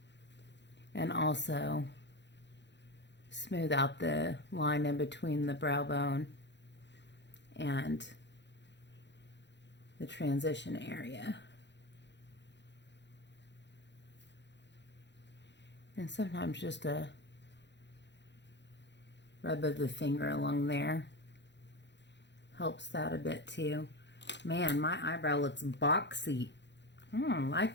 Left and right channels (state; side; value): late; right; 0.52 ms